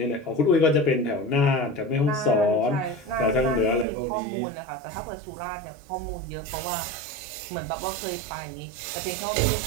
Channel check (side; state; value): left; drops out; at 3.9 s